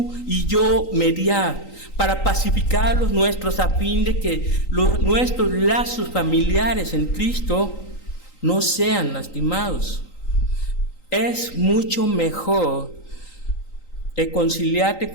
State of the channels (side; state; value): right; late; 3.9 ms